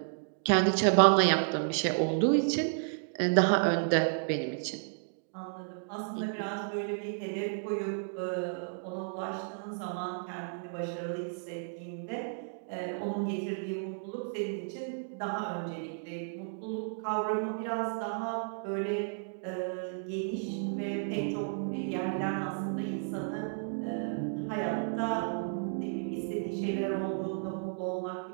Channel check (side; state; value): left; silent; digital silence